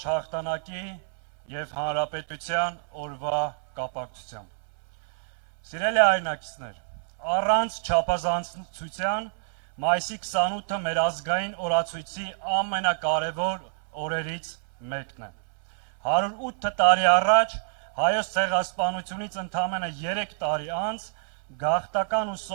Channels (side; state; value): left; silent; 60 dB below the other